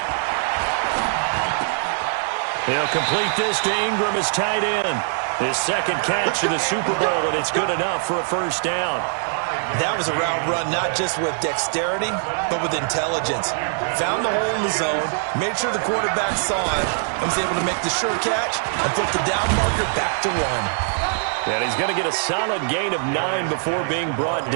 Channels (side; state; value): left; silent; digital silence